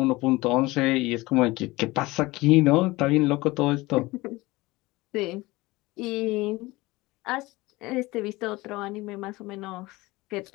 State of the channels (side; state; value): right; quieter; 20.9 dB